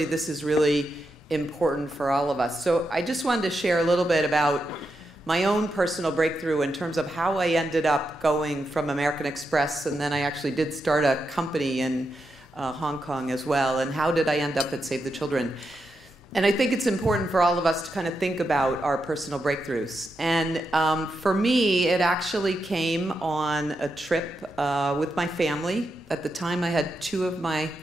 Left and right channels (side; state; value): both; normal; correlation 0.85